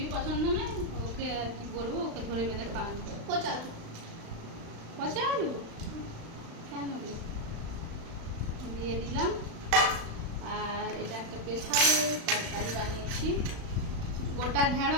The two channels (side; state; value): left; late; 36 ms